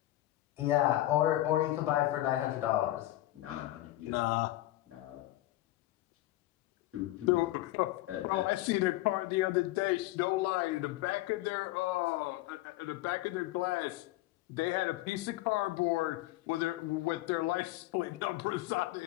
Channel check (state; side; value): quieter; right; 16.7 dB